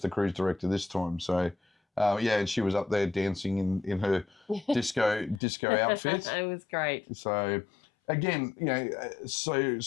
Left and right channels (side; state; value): right; drops out; at 5.4 s